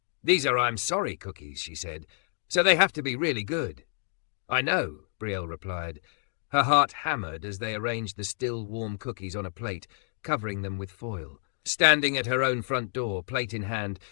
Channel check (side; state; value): right; silent; digital silence